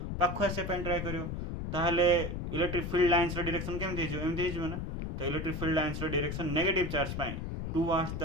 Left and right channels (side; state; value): left; noise; rumble, 4 dB below the sound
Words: पाख आसापी ट्राए कर ताहले इलेक्ट्रिक फील्ड लाइन्स डायरेक्शन केमती एमती हो ना तो electric field lines direction negative charge पे towards